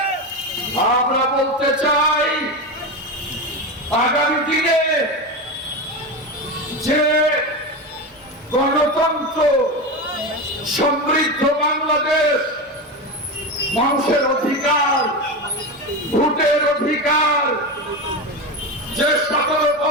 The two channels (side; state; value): both; normal; correlation 0.19